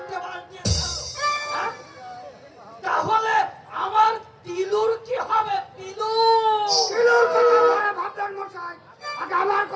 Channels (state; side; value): identical; both; correlation 1.00